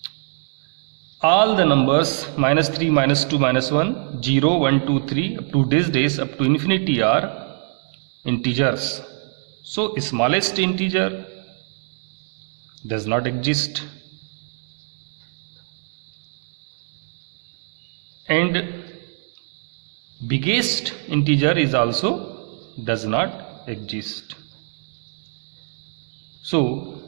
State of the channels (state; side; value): silent; left; 57 dB below the other